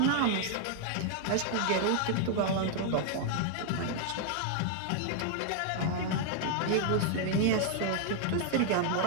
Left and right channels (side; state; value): both; different; correlation 0.00